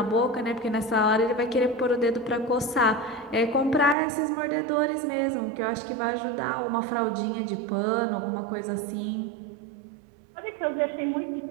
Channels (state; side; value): drops out; left; at 4.0 s